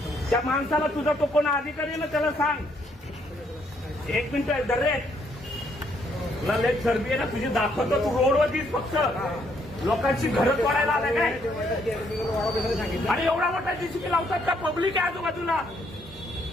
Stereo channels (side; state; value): both; normal; correlation 0.71